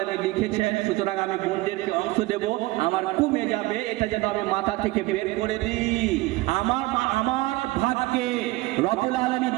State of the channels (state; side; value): quieter; left; 19.8 dB